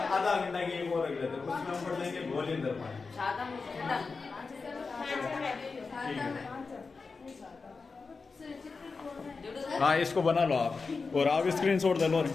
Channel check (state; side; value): quieter; right; 4.4 dB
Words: आधा घंटा की एक और रख लेते हैं, उसमें हम पढ़ लेंगे भोलेंद्र पानी। हाँ इसको बना लो आप और आप स्क्रीनशॉट ले लो।